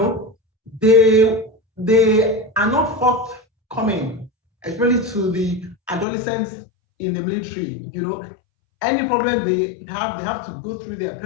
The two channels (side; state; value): right; drops out; at 6.1 s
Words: they are not forthcoming, especially to the adolescents in the military. You know, any problem they have to go through their